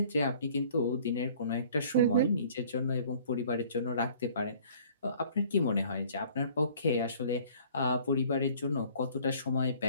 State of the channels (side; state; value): both; inverted; correlation -0.53